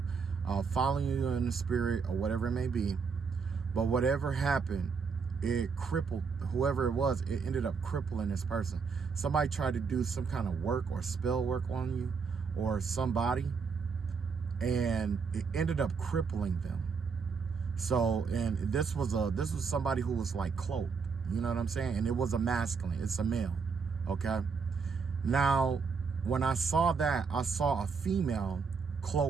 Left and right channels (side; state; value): left; quieter; 5.4 dB